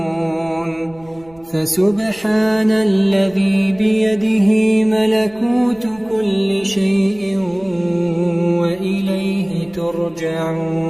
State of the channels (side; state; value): right; noise; rumble, 27 dB below the sound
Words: فسبحان الذي بيده ملكوت كل شيء وإليه